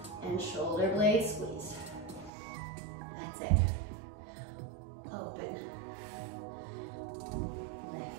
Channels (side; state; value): left; drops out; at 2.3 s